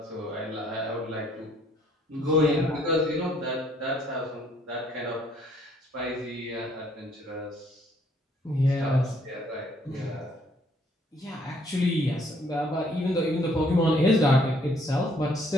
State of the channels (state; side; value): normal; both; correlation 0.64